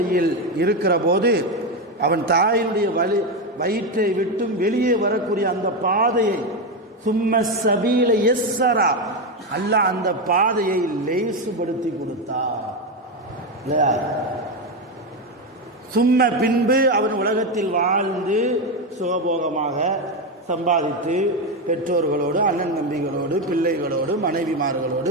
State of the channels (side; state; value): both; normal; correlation 0.11